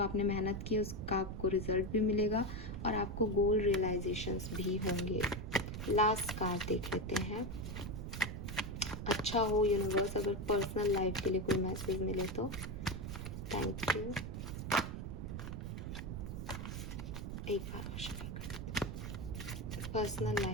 मेहनत की उसका आपको रिजल्ट भी मिलेगा, और आपको गोल रियलाइजेशंस भी होंगे। लास्ट कार्ड देख लेते हैं। अच्छा हो यूनिवर्स, अगर पर्सनल लाइफ के लिए कोई मैसेज मिले तो थैंक यू। एक बार और शेयर कर देते हैं। पर्सनल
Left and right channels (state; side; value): noise; right; rumble, 6 dB below the sound